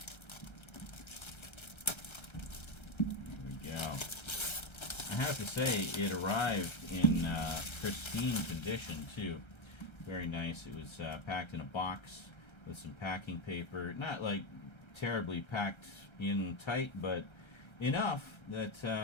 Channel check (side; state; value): right; late; 1.3 ms